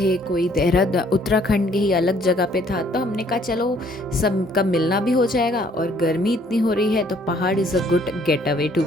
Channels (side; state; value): both; normal; correlation 0.62